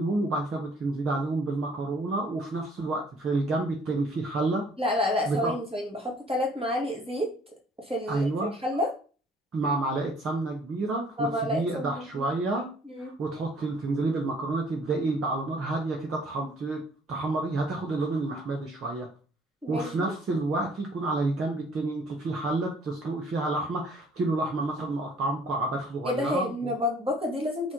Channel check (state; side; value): normal; both; correlation 0.58